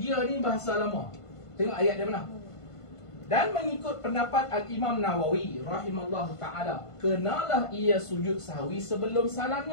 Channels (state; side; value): late; right; 1.5 ms